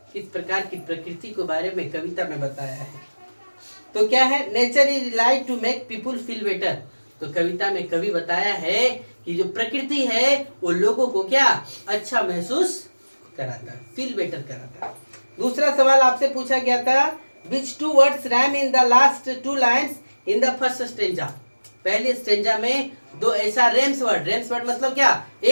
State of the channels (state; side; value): inverted; both; correlation -1.00